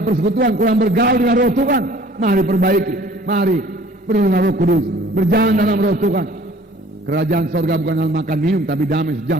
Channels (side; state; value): both; normal; correlation 0.52